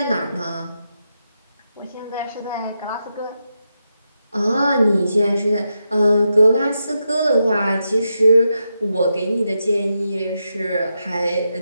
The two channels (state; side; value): inverted; both; correlation -0.86